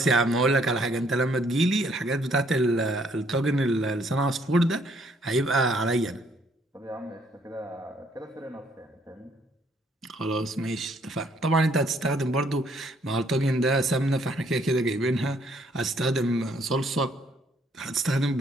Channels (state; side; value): normal; both; correlation 0.66